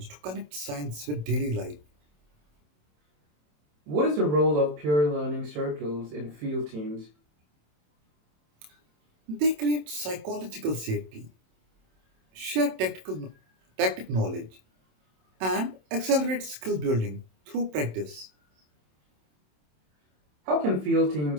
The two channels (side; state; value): left; late; 27 ms